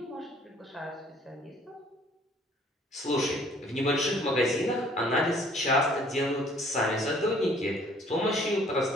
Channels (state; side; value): normal; both; correlation 0.58